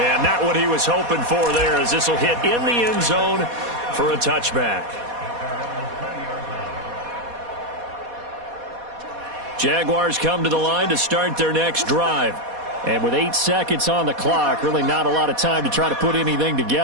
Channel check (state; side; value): late; left; 4.2 ms